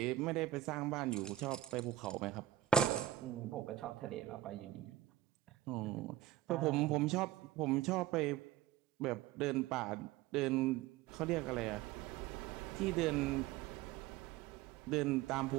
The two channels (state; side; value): quieter; left; 13.0 dB